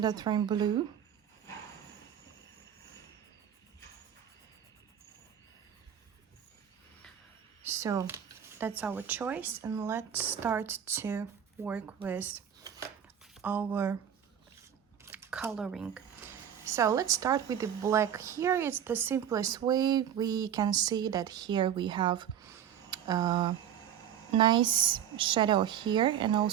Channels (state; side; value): quieter; left; 9.3 dB